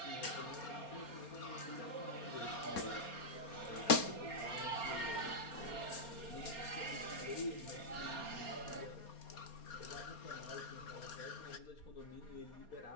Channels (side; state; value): right; late; 4.3 ms